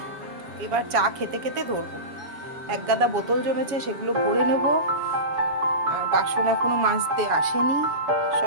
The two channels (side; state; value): left; late; 7.2 ms